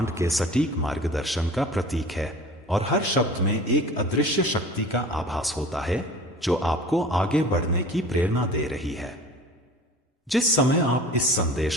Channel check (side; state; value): both; normal; correlation 0.41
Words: के सटीक मार्गदर्शन का प्रतीक है और हर शब्द में एक अदृश्य शक्ति का आभास होता है जो आपको आगे बढ़ने की प्रेरणा दे रही है। जिस समय आप इस